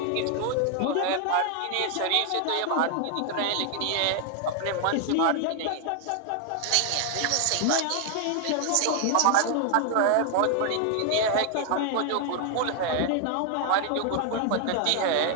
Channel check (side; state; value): both; different; correlation 0.00